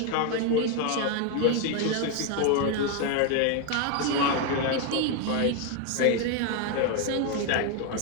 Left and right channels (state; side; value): different; both; correlation 0.01